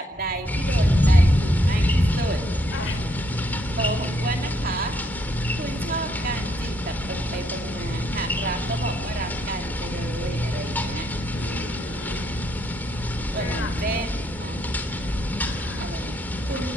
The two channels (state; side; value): normal; both; correlation 0.72